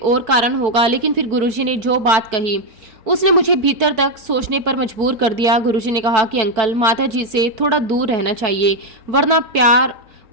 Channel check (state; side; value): late; left; 4.5 ms